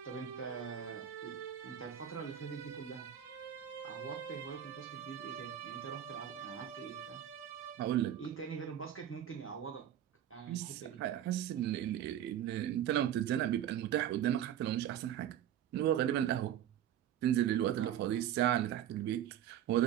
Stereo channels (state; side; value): quieter; left; 10.8 dB